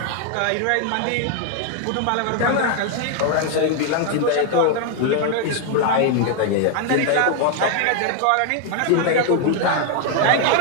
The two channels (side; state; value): both; different; correlation 0.00